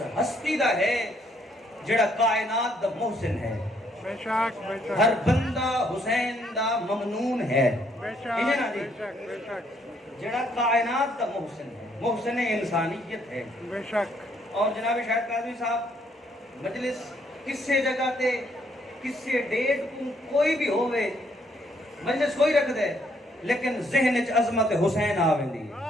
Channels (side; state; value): both; normal; correlation 0.69